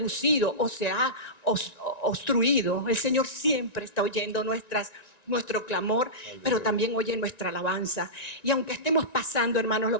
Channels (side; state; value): right; late; 1.9 ms